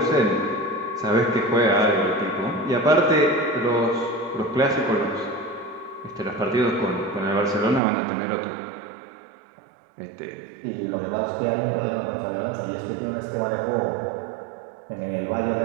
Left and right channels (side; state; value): left; drops out; at 7.8 s